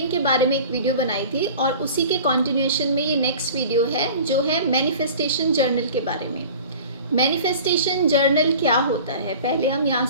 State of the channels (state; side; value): inverted; both; correlation -0.40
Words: के बारे में एक वीडियो बनाई थी और उसी के कंटिन्यूएशन में ये नेक्स्ट वीडियो है जो है मैनिफेस्टेशन जर्नल के बारे में। मैनिफेस्टेशन जर्नल क्या होता है, पहले हम यहाँ